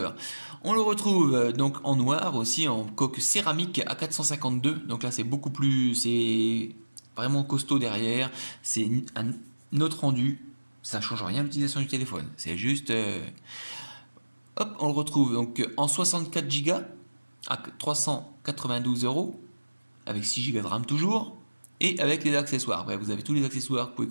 On le retrouve donc en noir aussi, en coque céramique à 452, donc là c'est beaucoup plus, c'est vraiment costaud derrière, c'est un autre rendu, ça change rien à l'utilisation du téléphone, c'est juste... Hop, on le retrouve donc en 64 Go à 392 €, avec 6 Go de RAM toujours, et avec les accessoires. Bref, vous avez tous les accessoires que vous pouvez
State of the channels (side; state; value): both; inverted; correlation -1.00